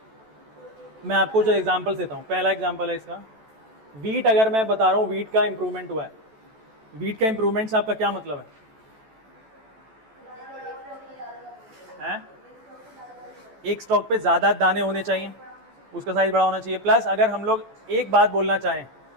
मैं आपको जो एग्जांपल देता हूं, पहला एग्जांपल है इसका, वीट। अगर मैं बता रहा हूं वीट का इंप्रूवमेंट हुआ है, वीट का इंप्रूवमेंट से आपका क्या मतलब है? एक स्टॉक पे ज्यादा दाने होने चाहिए, उसका साइज बड़ा होना चाहिए। प्लस अगर हम लोग एक बात बोलना चाहें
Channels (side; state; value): left; late; 14 ms